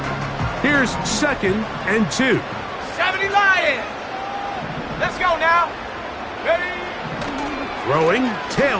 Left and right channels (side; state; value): both; identical; correlation 1.00